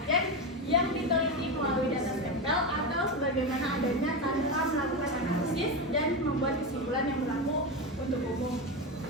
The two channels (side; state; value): both; normal; correlation 0.15